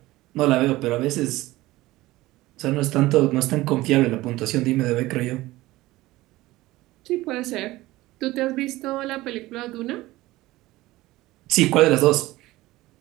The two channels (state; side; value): quieter; left; 18.1 dB